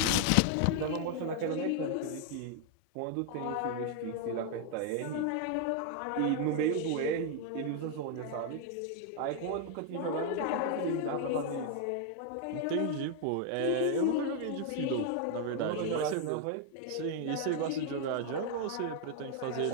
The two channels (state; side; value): different; both; correlation 0.00